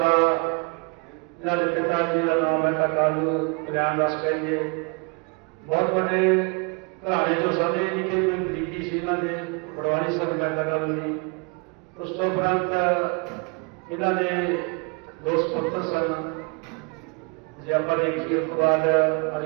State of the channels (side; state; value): left; quieter; 32.5 dB